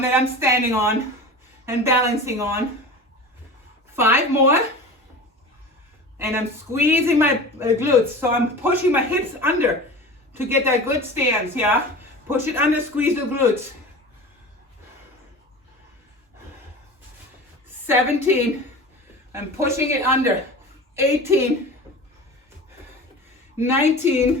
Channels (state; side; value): normal; both; correlation 0.34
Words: that I'm standing on and balancing on. 5 more, and I'm squeezing my glutes. So I'm pushing my hips under to get that good stance, yeah? Push it under, squeeze the glutes. 17, I'm pushing it under. 18,